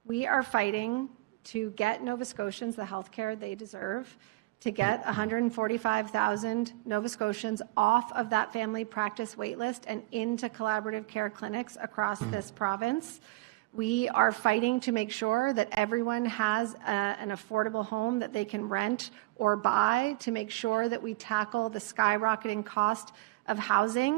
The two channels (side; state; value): left; quieter; 20.8 dB